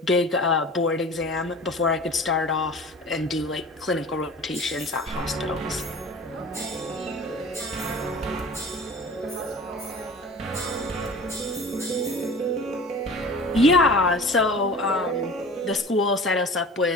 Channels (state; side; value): normal; both; correlation 0.40